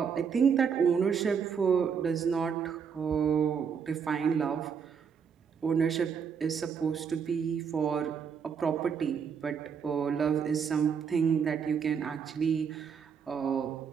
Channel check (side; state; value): left; quieter; 6.7 dB